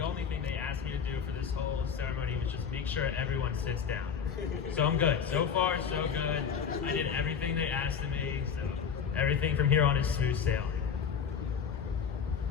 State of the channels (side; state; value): right; quieter; 7.0 dB